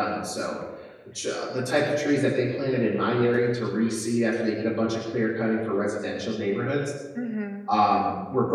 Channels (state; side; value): identical; both; correlation 1.00